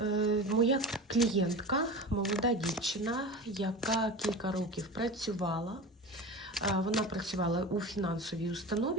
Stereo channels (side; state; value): both; normal; correlation 0.30